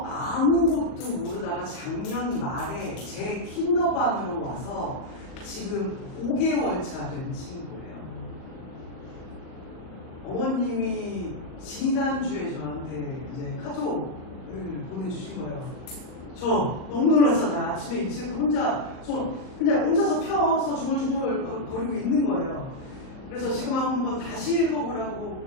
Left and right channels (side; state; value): right; late; 38 ms